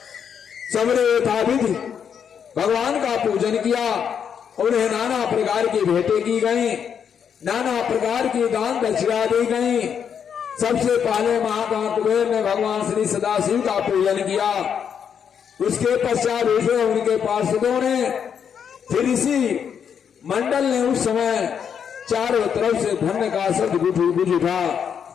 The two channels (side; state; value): right; quieter; 7.7 dB